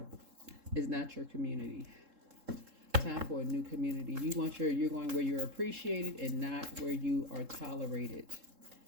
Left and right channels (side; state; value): left; late; 3.7 ms